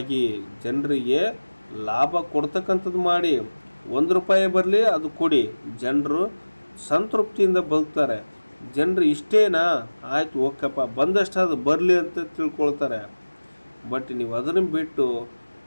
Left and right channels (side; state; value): both; inverted; correlation -1.00